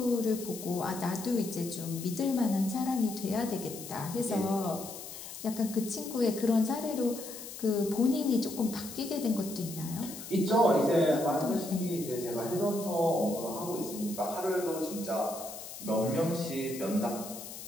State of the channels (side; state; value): left; noise; hiss, 11 dB below the sound